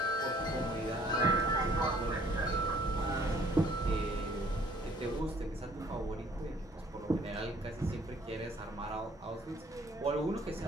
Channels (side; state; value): both; normal; correlation 0.59